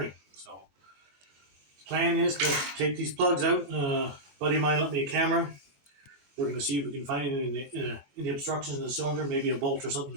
So plan is to take these plugs out. Buddy of mine lent me a camera. We're going to see if we can find it in the obstructions in the cylinder. Maybe a bolt or something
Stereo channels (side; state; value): left; late; 22 ms